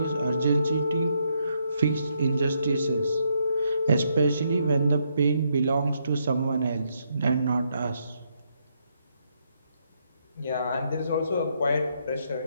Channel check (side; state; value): both; inverted; correlation -0.76